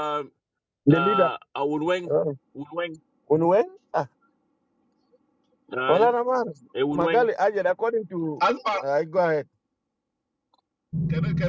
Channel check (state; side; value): identical; both; correlation 1.00